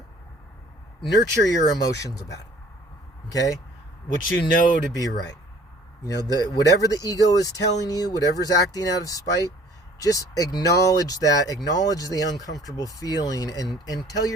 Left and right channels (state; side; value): normal; both; correlation 0.54